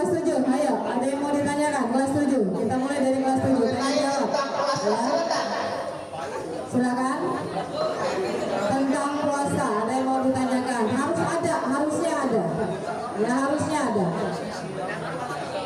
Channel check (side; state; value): both; identical; correlation 1.00